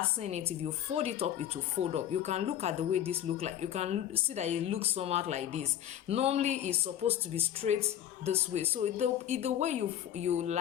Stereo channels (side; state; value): right; quieter; 11.0 dB